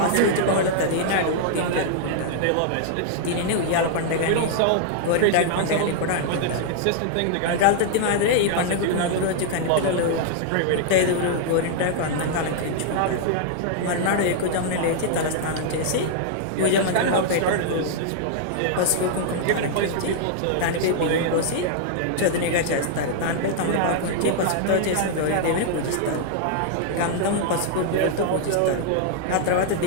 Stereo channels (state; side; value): different; both; correlation -0.01